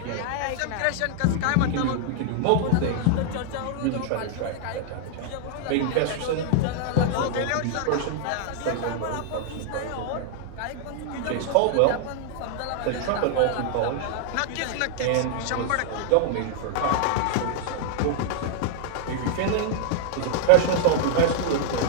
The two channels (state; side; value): different; both; correlation -0.01